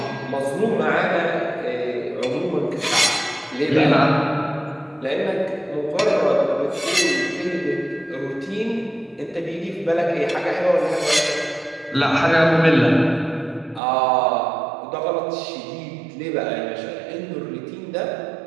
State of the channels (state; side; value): drops out; left; at 13.8 s